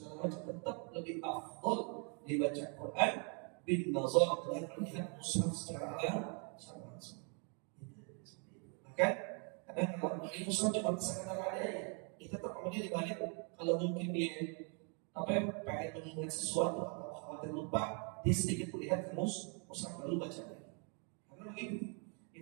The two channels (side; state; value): left; quieter; 38.3 dB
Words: tetap lebih afdal dibaca Quran bin nazar dengan melihat mushaf secara langsung. Maka kadang kalau di mushaf cuma sekedar ada ya, kita tetap kemudian dibalik kalau mungkin dia pengen mengingat sesuatu atau khawatir lupa, dia sedikit melihat ke mushaf lalu baca lagi. Karena begitu,